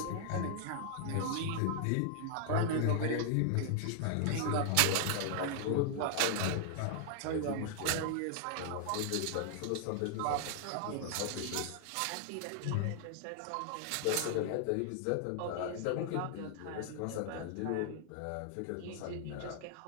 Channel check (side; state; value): both; different; correlation -0.01